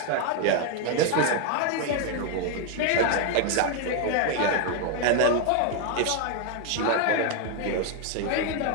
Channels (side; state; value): both; different; correlation 0.01